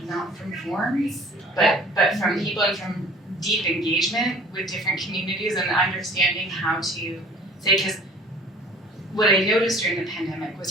not from forms, but from people and from deep engagement with different communities and understanding how to say, because what I noticed during the pandemic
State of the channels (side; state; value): both; normal; correlation 0.49